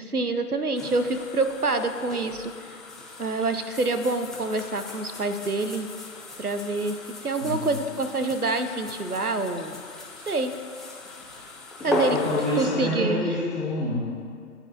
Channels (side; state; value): both; normal; correlation 0.31